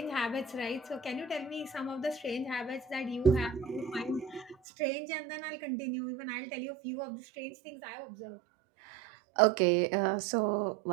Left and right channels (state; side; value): drops out; left; at 4.5 s